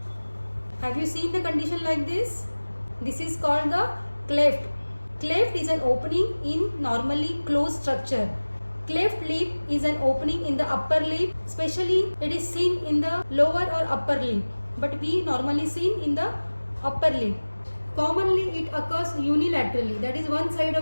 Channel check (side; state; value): both; inverted; correlation -1.00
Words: Have you seen the condition like this? This is called the cleft. Cleft is an opening in normally closed structure. Cleft lip is an opening in the upper lip, especially it is seen in the lower or upper lip, but we normally seen in the upper lip. Commonly it occurs unilaterally, that is one side